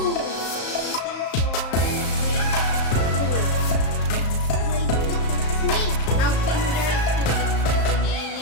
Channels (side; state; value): right; late; 35 ms